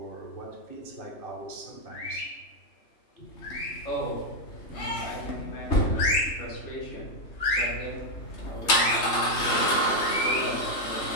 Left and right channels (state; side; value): late; right; 3.3 ms